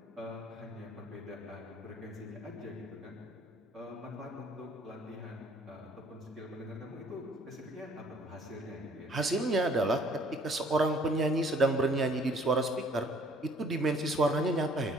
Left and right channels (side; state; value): both; normal; correlation 0.58